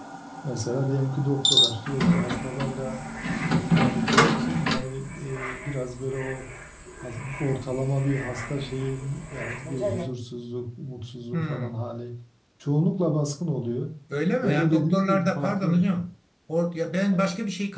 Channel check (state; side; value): identical; both; correlation 1.00